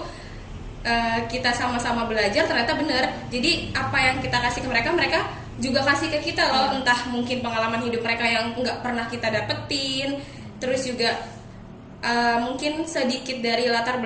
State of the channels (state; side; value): identical; both; correlation 1.00